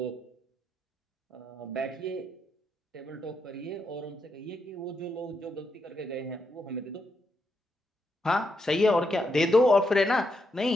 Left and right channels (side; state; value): both; normal; correlation 0.81